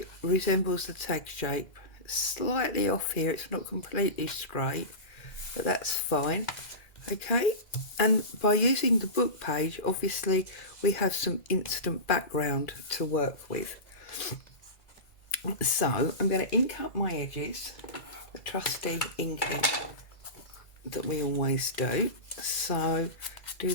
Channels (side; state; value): right; late; 2.4 ms